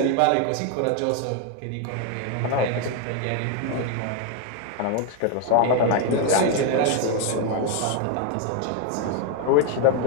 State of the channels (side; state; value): both; different; correlation 0.01